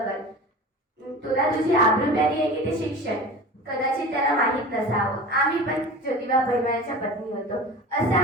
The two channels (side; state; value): both; normal; correlation 0.35